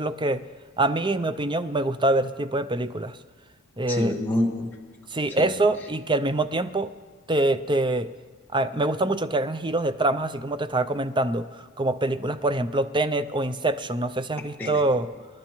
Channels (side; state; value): both; normal; correlation 0.50